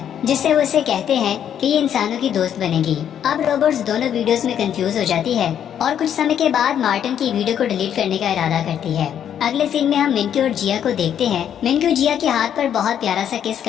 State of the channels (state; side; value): quieter; right; 9.4 dB